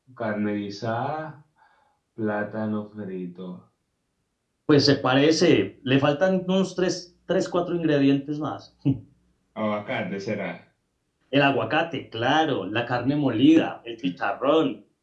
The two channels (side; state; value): both; identical; correlation 1.00